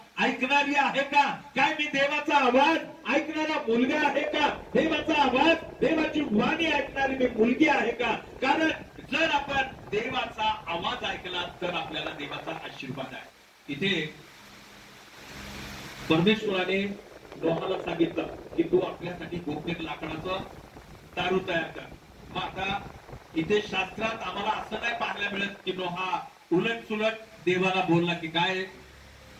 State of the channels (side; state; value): both; identical; correlation 1.00